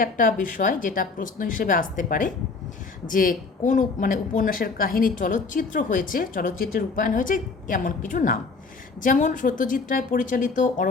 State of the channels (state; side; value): quieter; right; 4.3 dB